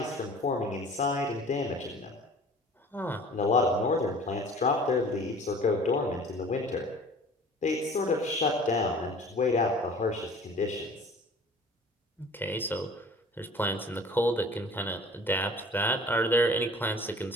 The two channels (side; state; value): both; normal; correlation 0.46